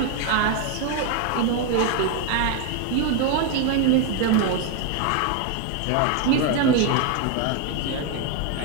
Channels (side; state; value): both; different; correlation 0.01